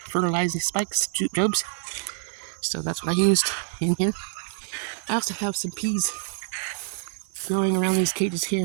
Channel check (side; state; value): left; silent; 61 dB below the other